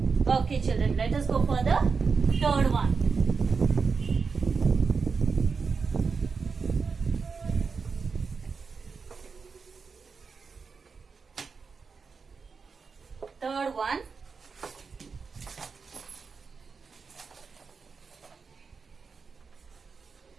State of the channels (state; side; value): quieter; left; 5.1 dB